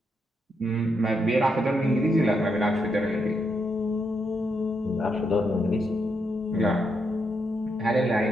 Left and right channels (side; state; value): both; normal; correlation 0.80